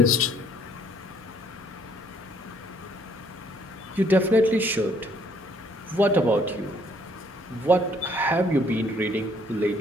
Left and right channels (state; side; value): normal; both; correlation 0.64